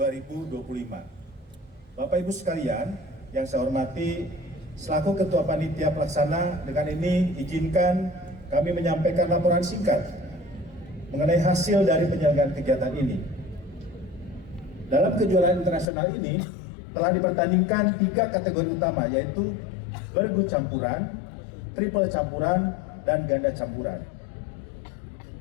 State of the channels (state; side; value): drops out; right; at 15.9 s